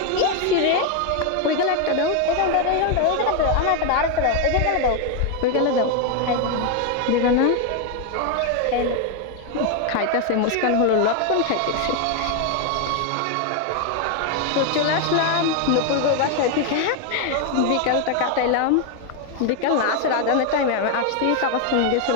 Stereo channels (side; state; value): both; different; correlation 0.01